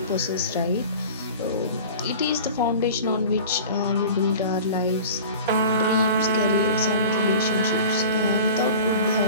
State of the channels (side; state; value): both; inverted; correlation -0.38